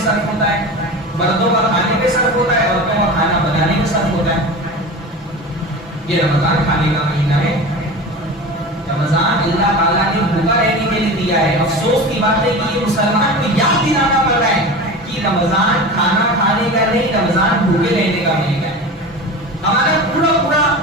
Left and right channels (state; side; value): normal; both; correlation 0.31